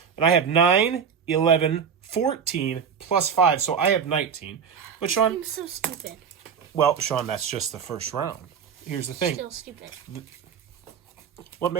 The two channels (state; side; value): quieter; left; 7.0 dB